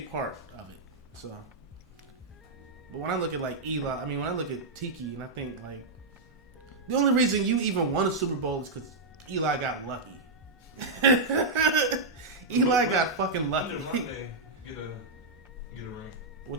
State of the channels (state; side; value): quieter; left; 3.4 dB